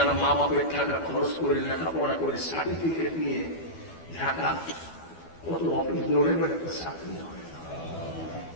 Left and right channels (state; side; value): late; right; 12 ms